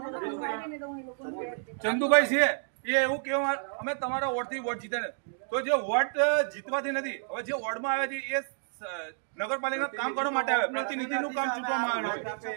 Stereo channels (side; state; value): left; silent; digital silence